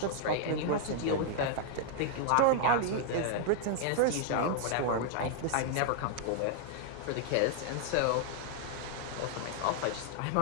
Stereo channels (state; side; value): different; both; correlation -0.01